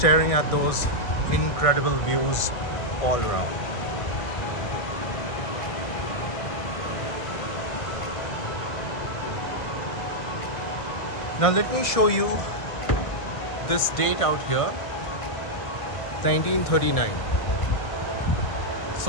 at those incredible views all around. Now let me show you this date out here, 1939. So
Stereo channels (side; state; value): right; late; 1.4 ms